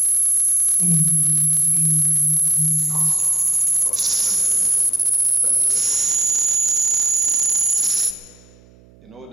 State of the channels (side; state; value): right; noise; hum, 28 dB below the sound